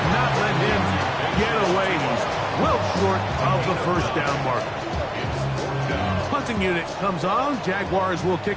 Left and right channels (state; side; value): identical; both; correlation 1.00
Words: not let him get away. He's well short of the first down marker. Punting unit comes on. Jaguars will